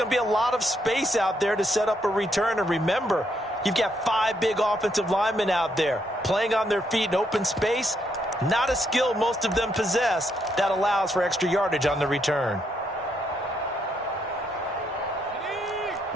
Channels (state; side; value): normal; both; correlation 0.76